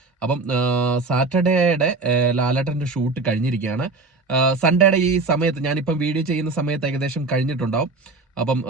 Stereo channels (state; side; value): quieter; left; 3.6 dB